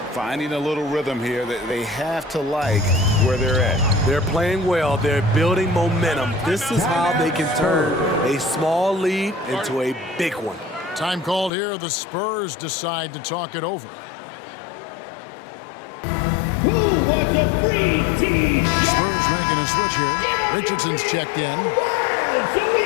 Finding a little rhythm here that they have to like where they're at. They're playing well. They're building momentum. This is how they can turn a small lead into a big one. Time called here. The Spurs decide to talk it over. Who wants a free team? Spurs making a switch here. Richardson's checked in.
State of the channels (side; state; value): right; drops out; at 11.5 s